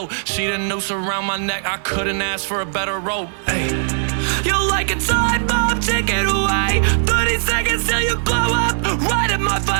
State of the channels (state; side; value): silent; left; digital silence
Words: She the noose around my neck, I couldn't ask for a better rope. Hey. You like a time bomb, take it away. 30 seconds till you blow up, right in my